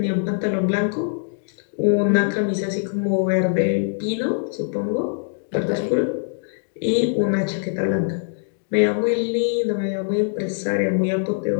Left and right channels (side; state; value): right; silent; digital silence